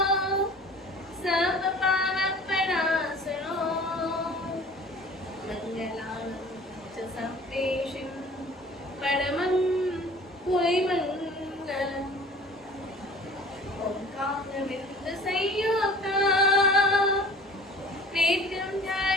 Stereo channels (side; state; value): both; normal; correlation 0.45